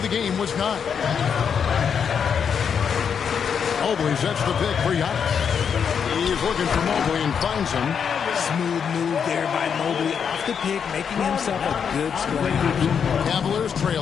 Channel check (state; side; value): quieter; right; 7.1 dB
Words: the game was 9. Mobley sets the pick for Giannis. He's looking for Mobley and finds him. Smooth move there by Mobley off the pick, making himself a good scoring option. Cavaliers